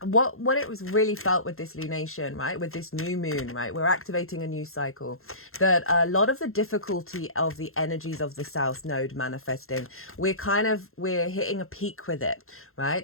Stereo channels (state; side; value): late; right; 0.62 ms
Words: What it was really felt with this lunation, right, with this new moon, right, we're activating a new cycle, that a lot of the difficulty of the energies of the south node manifesting, we're hitting a peak with it,